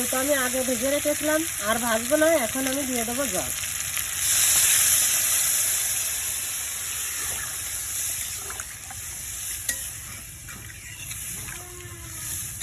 আমি আগে ভেজে রেখেছিলাম, আর ভাজবো না। এখন আমি দিয়ে দেবো জল।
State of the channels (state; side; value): identical; both; correlation 1.00